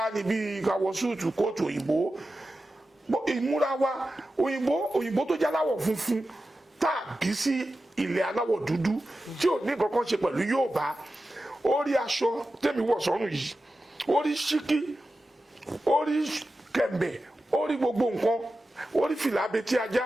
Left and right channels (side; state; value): both; normal; correlation 0.93